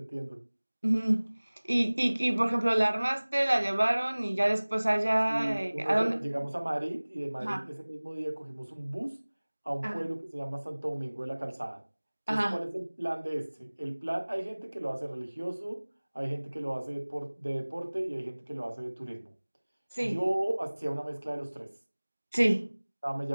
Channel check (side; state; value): both; inverted; correlation -1.00